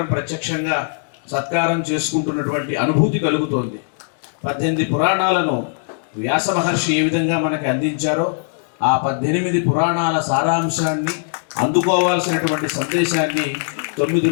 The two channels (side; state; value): right; silent; 66 dB below the other